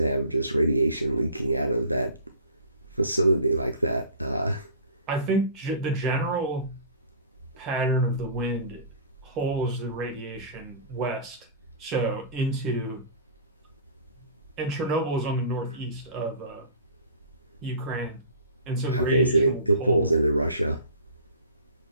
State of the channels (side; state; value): both; inverted; correlation -0.42